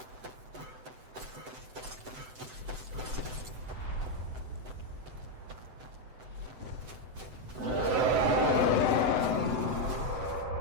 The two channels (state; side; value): late; left; 7.9 ms